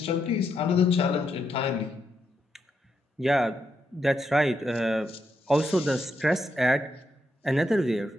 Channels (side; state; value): both; normal; correlation 0.81